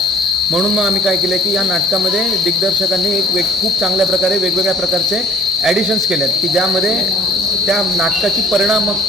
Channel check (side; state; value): both; normal; correlation 0.55